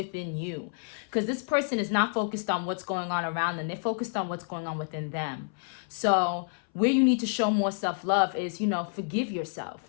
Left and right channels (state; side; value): silent; right; 59 dB below the other